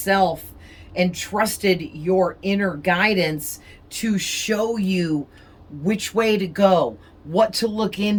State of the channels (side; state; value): both; identical; correlation 1.00